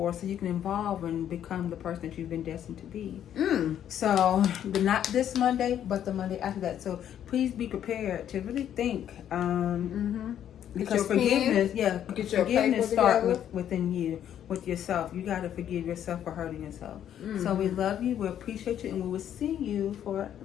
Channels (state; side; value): quieter; right; 10.2 dB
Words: so you can evolve and become the person that you've been destined to be. So, not this Monday, but the Monday after that. So please be prepared to really think. Because forgiveness, forgiveness starts within you, with yourself. You got to forgive yourself for hurting yourself. So we love you, we appreciate you, and we will see you for